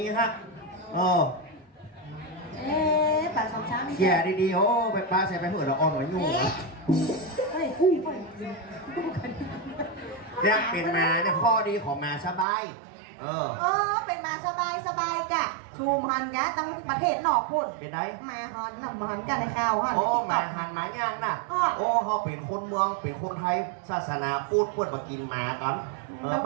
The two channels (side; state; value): left; drops out; at 12.5 s